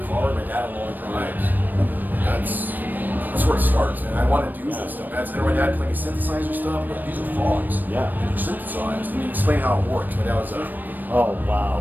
car, my dad on long drives. That's where it starts, man. I want to do this stuff. And my dad playing synthesizer stuff. These are frogs. Yeah. They're synthesized. And he explained how it works. My dad was oh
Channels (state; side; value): late; left; 0.089 ms